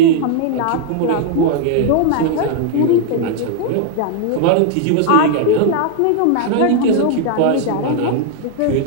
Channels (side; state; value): both; different; correlation 0.00